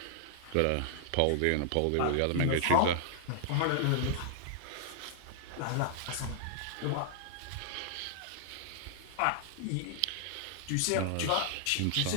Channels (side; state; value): both; different; correlation -0.01